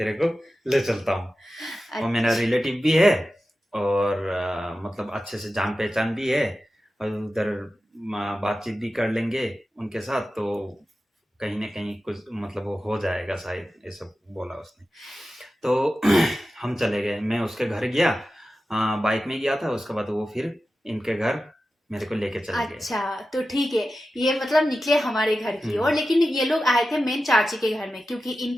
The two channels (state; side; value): normal; both; correlation 0.93